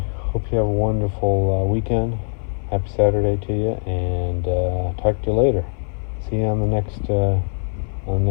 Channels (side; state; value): right; silent; 58 dB below the other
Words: hope you have a wonderful weekend. Happy Saturday to you, and talk to you later. See you on the